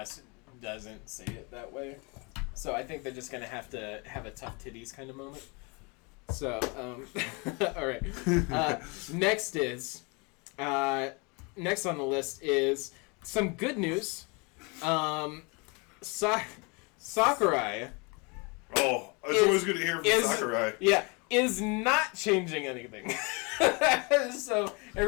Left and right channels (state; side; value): quieter; right; 30.3 dB